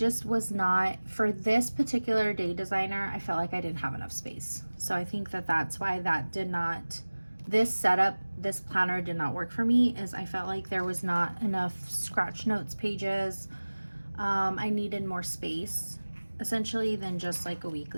was not, for this particular Day Designer, I felt like I didn't have enough space. So I think that that's why this setup, this planner did not work for me, is I felt like there was not enough scratch notes pages. I needed more space, essentially, than just like a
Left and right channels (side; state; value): both; inverted; correlation -1.00